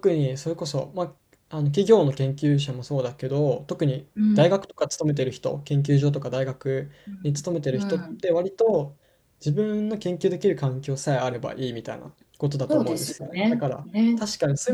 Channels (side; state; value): both; identical; correlation 1.00